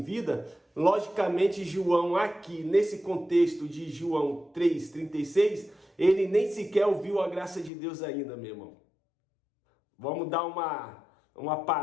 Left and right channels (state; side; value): drops out; right; at 7.7 s